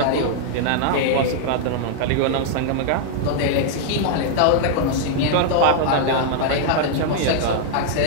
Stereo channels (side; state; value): both; different; correlation -0.01